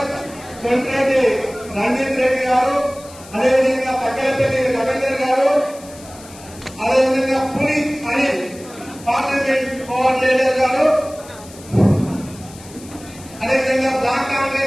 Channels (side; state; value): left; noise; hiss, 20 dB below the sound